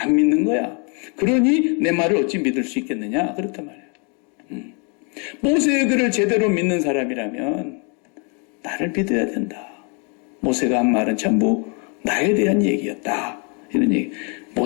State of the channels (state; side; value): quieter; right; 35.9 dB